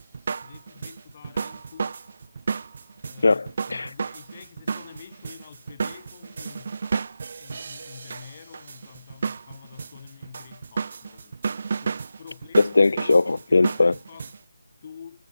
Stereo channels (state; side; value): inverted; both; correlation -0.93